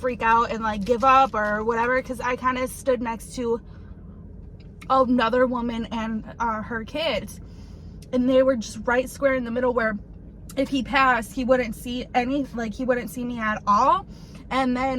out and like give up or whatever? Because I kind of stood next to another woman and her kids, and they were just right square in the middle where if he passed, he wouldn't see he wouldn't see me at all. And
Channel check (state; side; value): identical; both; correlation 1.00